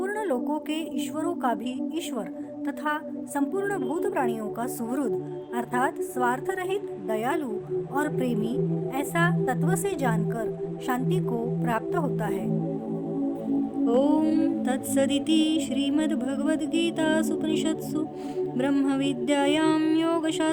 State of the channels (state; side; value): identical; both; correlation 1.00